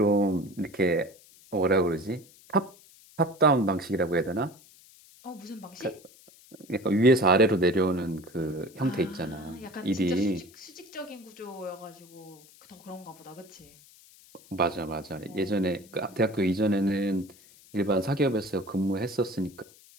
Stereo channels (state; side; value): noise; left; hiss, 25 dB below the sound